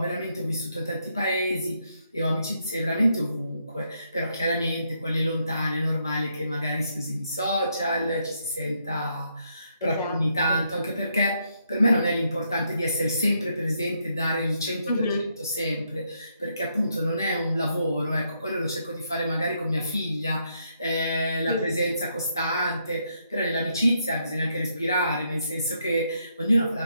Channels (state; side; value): inverted; both; correlation -0.76